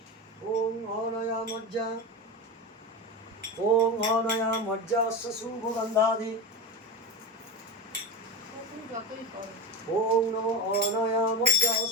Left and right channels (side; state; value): both; normal; correlation 0.21